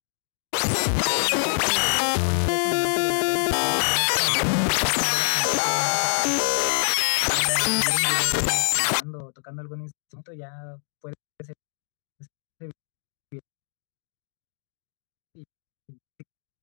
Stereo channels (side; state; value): right; silent; digital silence